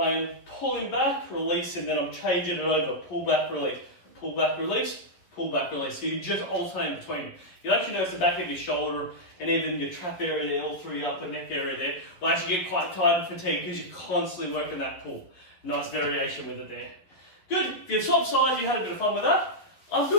am pulling back, release, and then I'm changing it over. Pull back, release. Pull back, release. Pull back, release. So you just alternate between them. You'll actually notice the back of your shoulder and even your trap area there, all through your upper neck area there, will actually get quite tired and fatigued because you're constantly working that pull. Nice variation with it there. Good. If you've swapped sides, you had a bit of fun with that, I'm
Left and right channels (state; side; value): late; right; 11 ms